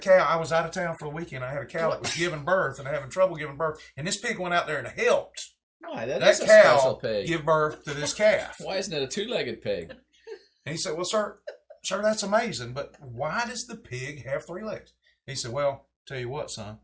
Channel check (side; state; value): both; identical; correlation 1.00